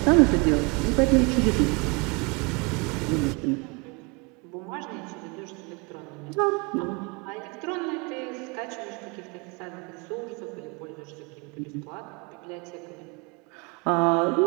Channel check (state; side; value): quieter; left; 30.3 dB